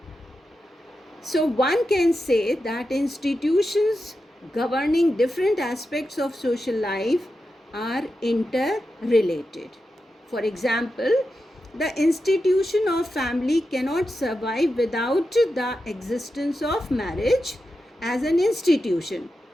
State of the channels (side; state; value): both; normal; correlation 0.89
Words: So one can say that institutions governing different aspects of social life are interrelated. For example, the institution of family cannot survive without the existence of marriage as an institution,